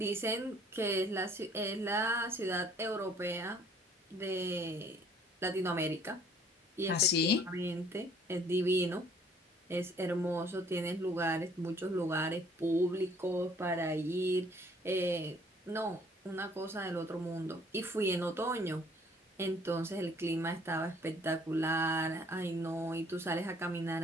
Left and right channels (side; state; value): both; normal; correlation 0.58